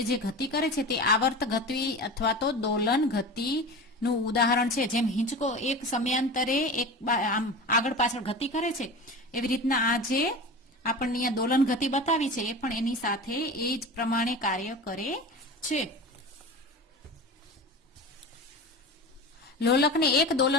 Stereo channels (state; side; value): normal; both; correlation 0.31